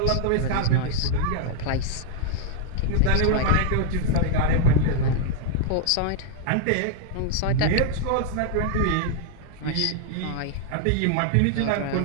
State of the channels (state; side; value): different; both; correlation -0.01